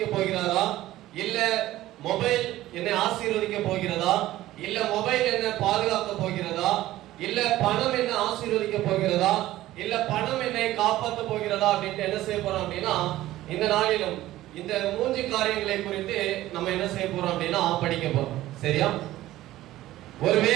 போகிறாரா, இல்ல மொபைல் என்னை ஆசீர்வதிக்க போகிறதா, இல்ல மொபைல் என்னை பாதுகாக்க போகிறதா, இல்ல பணம் என்னை ஆசீர்வதிக்க போகிறதா, இல்ல பணம் என்னை காப்பாற்ற போகிறதா அப்படின்ட்டு என்ன செய்ய போறோம் அப்படின்னா, இந்த நாளிலும் இந்த 3 காரியங்களை குறித்து நம்ம என்ன செய்ய போறோம் அப்படின்னா படிக்க போறோம். சரியா?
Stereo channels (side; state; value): left; quieter; 15.4 dB